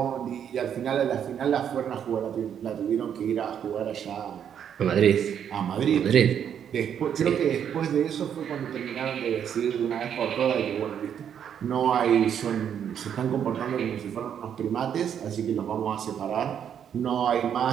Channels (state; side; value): quieter; left; 8.7 dB